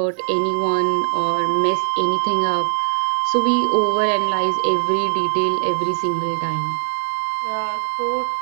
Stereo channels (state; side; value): silent; left; digital silence